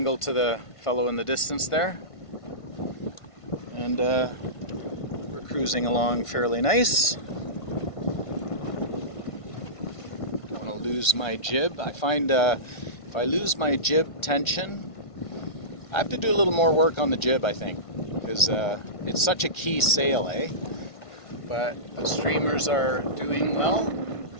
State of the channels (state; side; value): late; right; 1.5 ms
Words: to the fellow in the distance there. And we're cruising along fairly nice. I want to lose my jib. I find if I lose my jib tension, I have to do a little more work on the jib, I think, because it's such a key sail, eh? But the streamers are doing well,